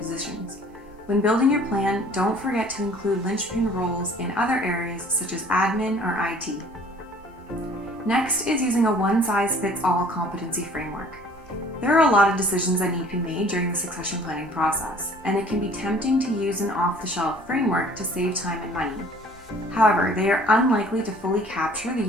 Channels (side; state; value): both; normal; correlation 0.53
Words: When building your plan, don't forget to include linchpin roles in other areas such as admin or IT. Next is using a one-size-fits-all competency framework. There are a lot of decisions that need to be made during the succession planning process, and it can be tempting to use an off-the-shelf framework to save time and money. However, they are unlikely to fully capture the